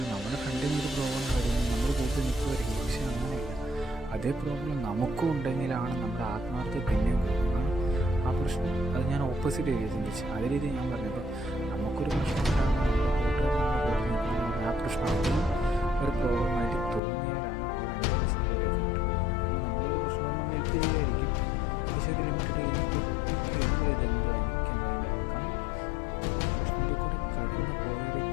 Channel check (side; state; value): right; drops out; at 17.0 s